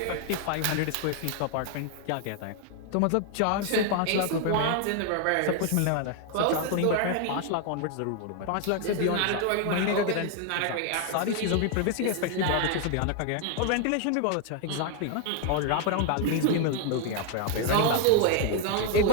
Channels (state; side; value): different; both; correlation 0.00